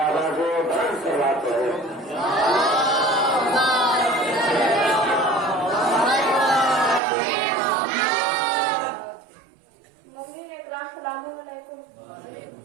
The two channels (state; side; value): drops out; left; at 7.0 s